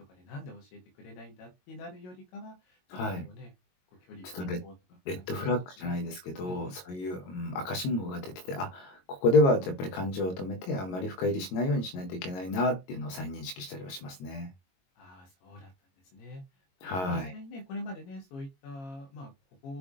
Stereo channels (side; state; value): right; late; 22 ms